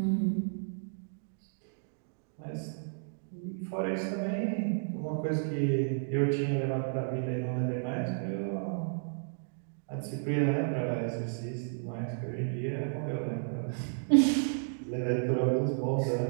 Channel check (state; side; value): silent; left; digital silence